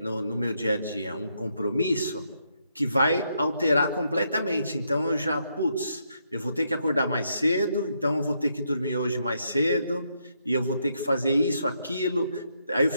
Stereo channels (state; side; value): inverted; both; correlation -0.77